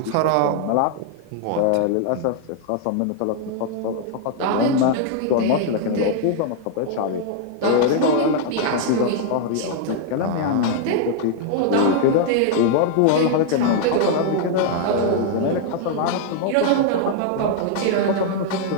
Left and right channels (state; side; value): different; both; correlation 0.00